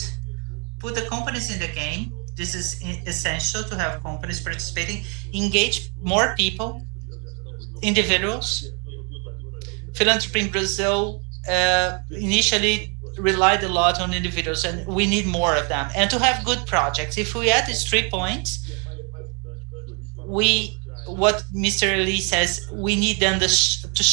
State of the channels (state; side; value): quieter; left; 35.8 dB